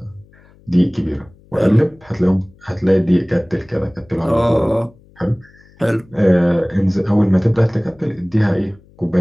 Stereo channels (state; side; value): noise; left; hum, 28 dB below the sound